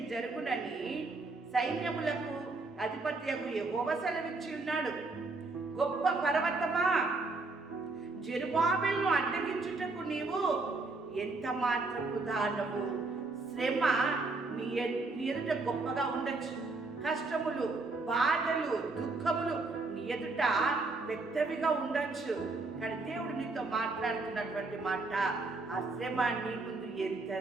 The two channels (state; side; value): quieter; left; 3.5 dB